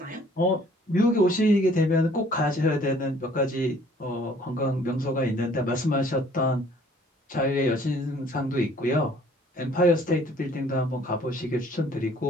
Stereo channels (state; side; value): normal; both; correlation 0.57